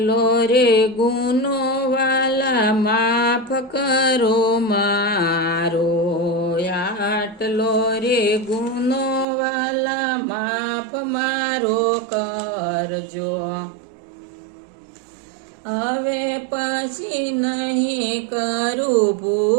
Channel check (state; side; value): drops out; left; at 9.2 s